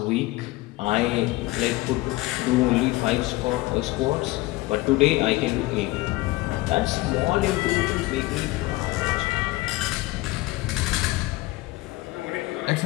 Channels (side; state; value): right; quieter; 19.7 dB